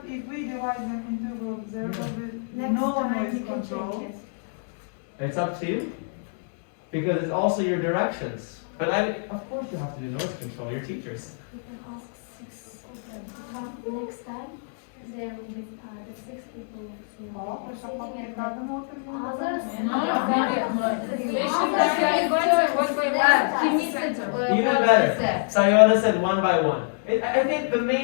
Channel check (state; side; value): silent; right; digital silence